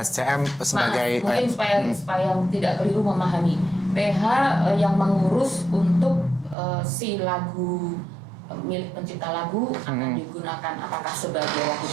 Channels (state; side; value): drops out; left; at 6.6 s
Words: sebagai mungkin supaya tidak keliru memahami. PH yang mengurus untuk si lagu milik pencipta lagu akan digunakan apakah sebagai lagu